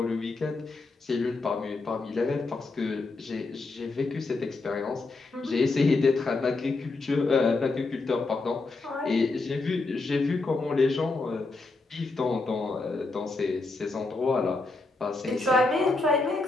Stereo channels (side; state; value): right; quieter; 3.5 dB